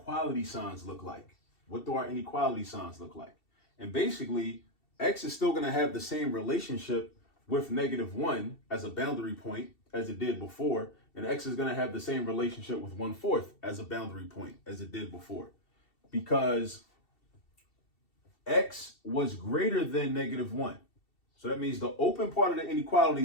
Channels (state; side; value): late; right; 2.7 ms